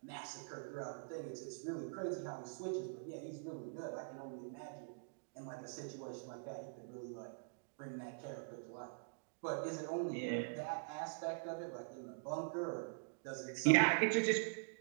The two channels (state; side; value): silent; left; digital silence